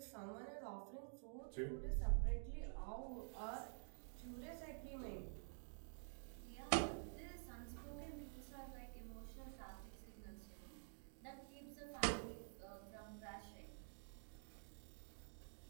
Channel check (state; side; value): silent; left; digital silence